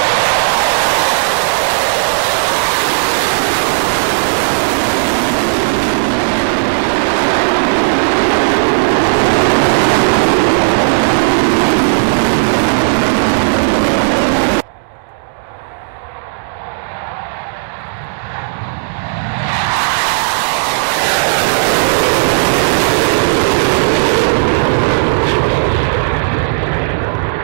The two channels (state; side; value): silent; left; digital silence